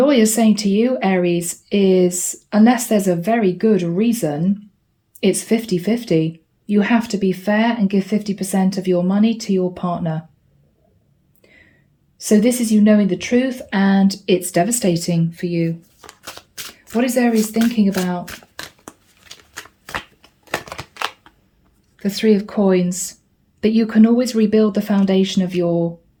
is saying to you, Aries, is unless there's a very good reason, it's 50-50. You have to be fair and give 50% of your money to your partner. So this is you knowing the truth, and it's devastating for you. What is Aries thinking about? The Three of Coins. That you can always rebuild the foundation of your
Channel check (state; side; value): identical; both; correlation 1.00